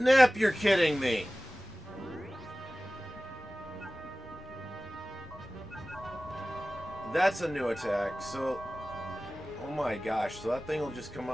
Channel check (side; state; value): both; normal; correlation 0.98